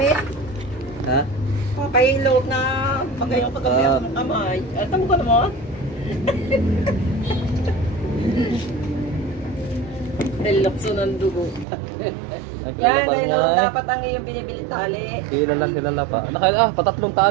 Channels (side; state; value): left; drops out; at 11.7 s